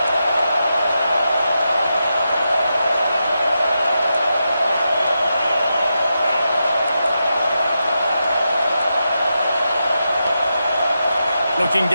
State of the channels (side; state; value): both; inverted; correlation -0.87